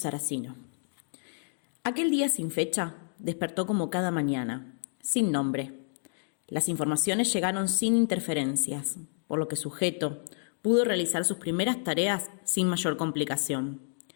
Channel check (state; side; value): silent; right; digital silence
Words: Aquel día sin fecha despertó como cada mañana, sin nombre. Las informaciones llegaron sin interferencias, por lo que sujeto pudo realizar sus primeras tareas sin mayor complicación.